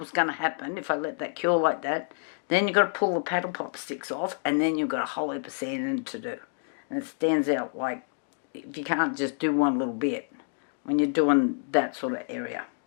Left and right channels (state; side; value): silent; right; digital silence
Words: going to happen if I let that cure like that, then you've got to pull the paddle pop sticks off, and then you've got a whole heap of sanding to do. And it stands out like, if you can't just do one little bit when you're doing that sort of area.